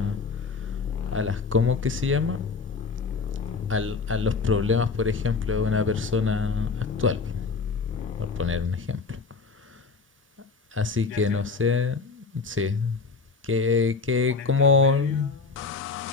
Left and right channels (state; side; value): quieter; right; 4.6 dB